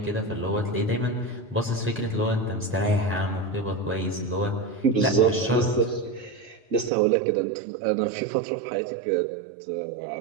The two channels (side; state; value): left; drops out; at 6.9 s